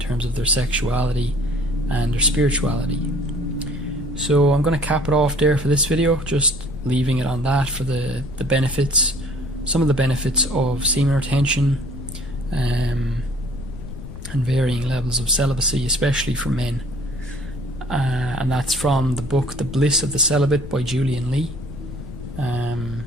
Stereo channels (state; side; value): noise; left; rumble, 11 dB below the sound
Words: of their sexuality and their spirituality. So I'm going to cap it off there for this video, just leaving it on that for the benefits, some of the benefits of semen retention and varying levels of celibacy, especially for men. And that's from the book The Bliss of the Celibate by Julian Lee.